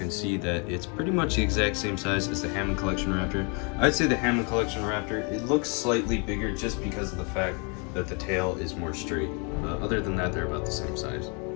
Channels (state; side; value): quieter; right; 34.5 dB